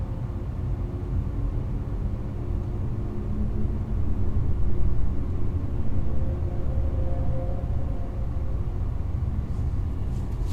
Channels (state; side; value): identical; both; correlation 1.00